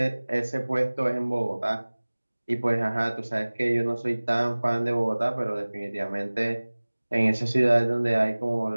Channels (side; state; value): both; inverted; correlation -1.00